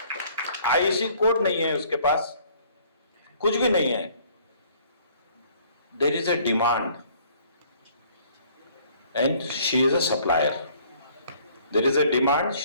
आईसी कोड नहीं है उसके पास, कुछ भी नहीं है। There is a demand and she is a supplier. There is a demand,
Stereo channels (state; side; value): inverted; both; correlation -0.58